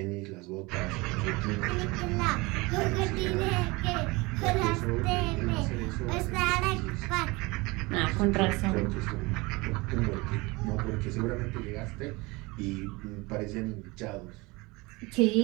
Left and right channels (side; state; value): left; quieter; 24.2 dB